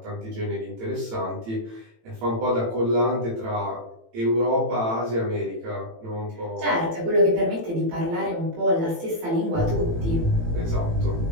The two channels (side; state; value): left; late; 18 ms